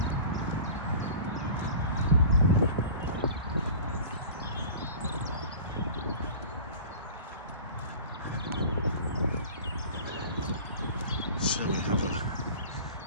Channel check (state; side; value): inverted; both; correlation -0.39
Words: So we have a